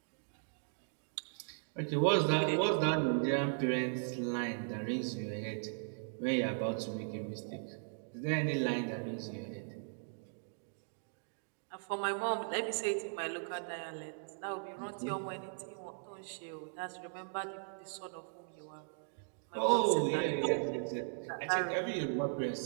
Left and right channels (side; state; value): left; silent; digital silence